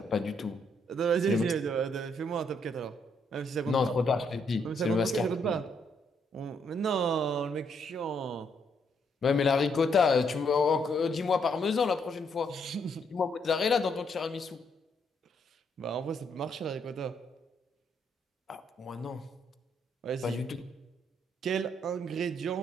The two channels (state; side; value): normal; both; correlation 0.73